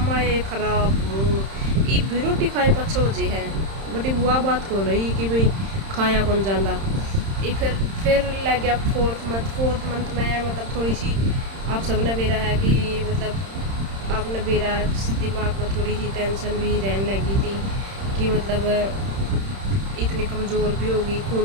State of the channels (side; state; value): left; late; 31 ms